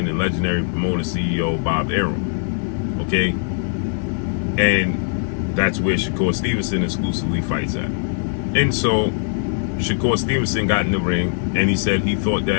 and legendary promoter CEO Bob Arum. Okay? And that's where Shakur Stevenson exclusively fights at. And so Shakur Stevenson got in the ring, and he said he thought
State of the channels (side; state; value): right; silent; digital silence